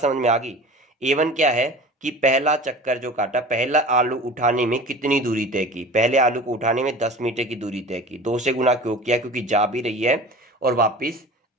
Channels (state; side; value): normal; both; correlation 0.37